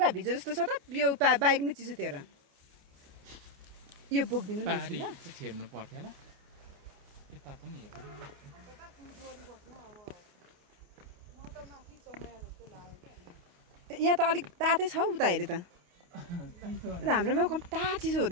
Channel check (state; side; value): late; left; 28 ms